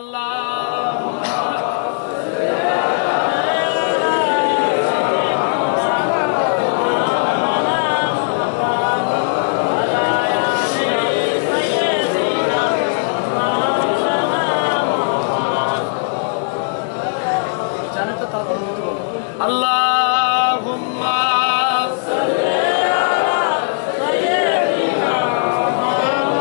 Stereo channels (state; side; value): silent; right; 64 dB below the other